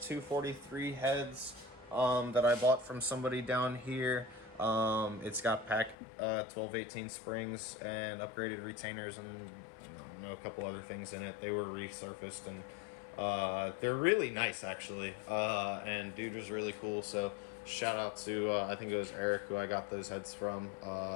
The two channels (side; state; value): right; drops out; at 6.0 s